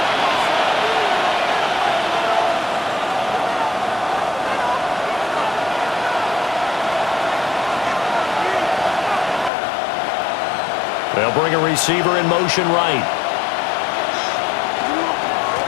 They'll bring a receiver in motion right.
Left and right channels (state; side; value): drops out; right; at 9.5 s